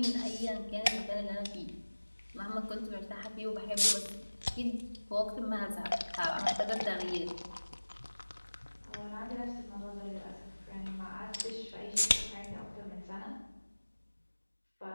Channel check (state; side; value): inverted; both; correlation -1.00